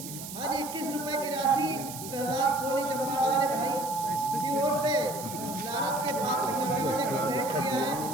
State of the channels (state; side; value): noise; right; hiss, 10 dB below the sound